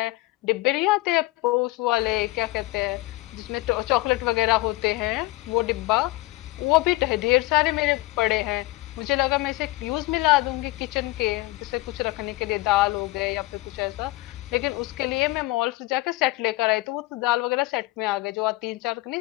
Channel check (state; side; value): quieter; right; 20.0 dB